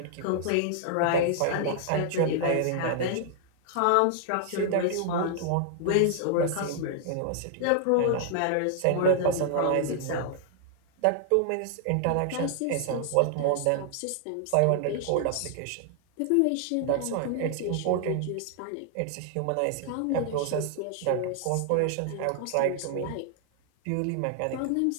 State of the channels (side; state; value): both; different; correlation 0.00